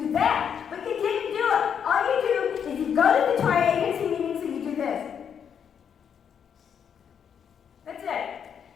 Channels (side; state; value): right; quieter; 7.8 dB